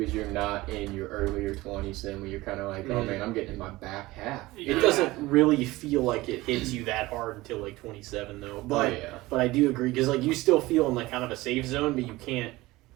you're not in your earlier 20s then when you're kind of like, oh man, I'm getting in my back half. It doesn't really feel like it hits you that hard until like 27 though. But yeah. but I do agree because like you still feel in like kind of a safe zone, but you can't.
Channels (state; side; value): quieter; left; 19.4 dB